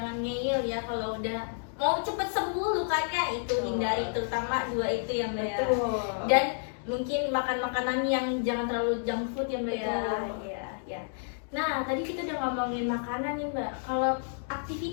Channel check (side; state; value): right; silent; digital silence